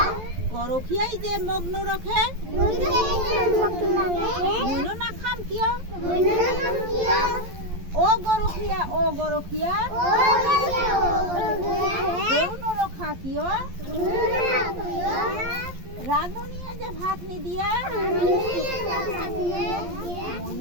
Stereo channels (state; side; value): late; left; 11 ms